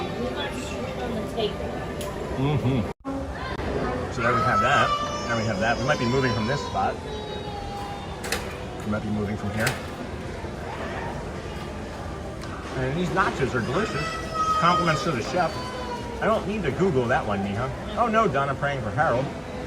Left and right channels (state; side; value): identical; both; correlation 1.00